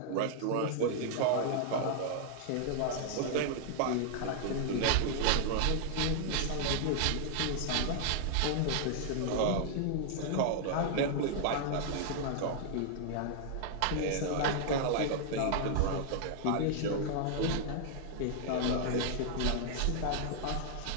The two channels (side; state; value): both; different; correlation 0.00